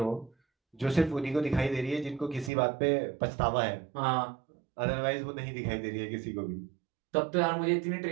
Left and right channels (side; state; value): left; drops out; at 2.5 s